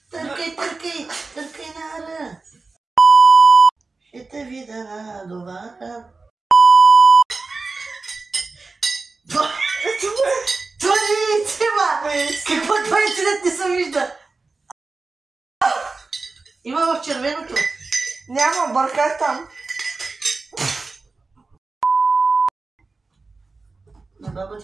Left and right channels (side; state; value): left; quieter; 3.9 dB